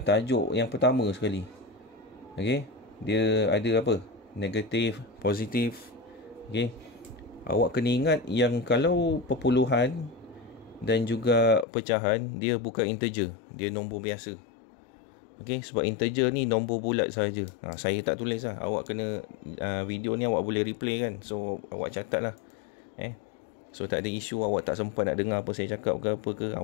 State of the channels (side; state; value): right; drops out; at 11.7 s